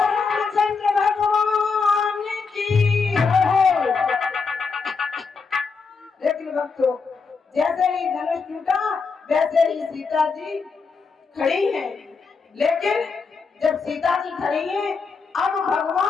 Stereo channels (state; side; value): quieter; right; 4.9 dB